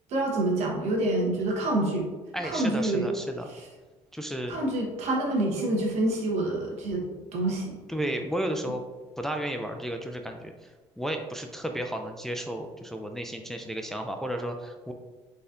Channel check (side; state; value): both; normal; correlation 0.49